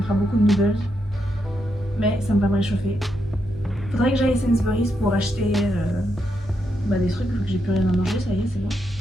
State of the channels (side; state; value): both; normal; correlation 0.82